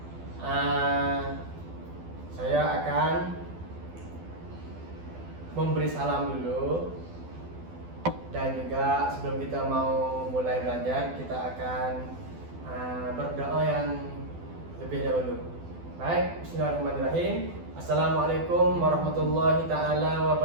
saya akan memberi salam dulu, dan juga sebelum kita mau mulai belajar kita akan berdoa yang lebih dahulu. Baik, bismillahirrahmanirrahim. Assalamualaikum warahmatullahi ta'ala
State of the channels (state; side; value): late; left; 12 ms